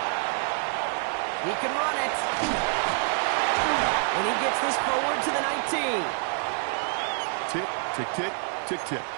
He can run it. And he gets this forward to the 19. Tick, tick, tick, tick, tick.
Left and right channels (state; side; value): silent; left; 58 dB below the other